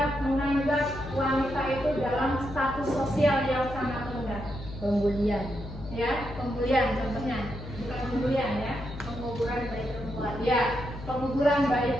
menganggap wanita itu dalam status sosial yang sangat rendah. Pembulian. Ya, pembulian contohnya, bukan pembulian ya, penguburan bayi perempuan. Ya, penguburan bayi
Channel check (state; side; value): noise; left; hum, 12 dB below the sound